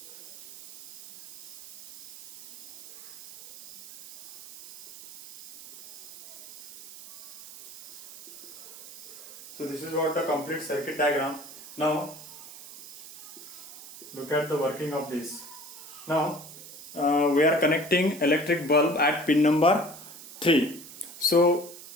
So this is what the complete circuit diagram. Now look at the working of this. Now we are connecting electric bulb at pin number 3. So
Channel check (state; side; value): noise; right; hiss, 15 dB below the sound